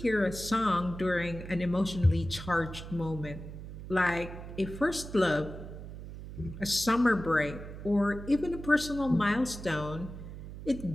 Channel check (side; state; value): right; noise; hum, 11 dB below the sound